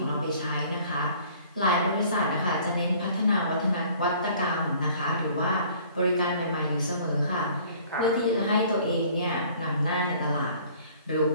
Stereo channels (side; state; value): both; inverted; correlation -0.53